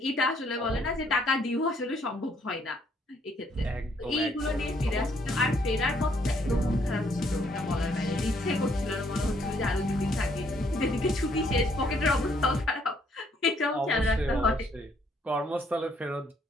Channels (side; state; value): both; normal; correlation 0.68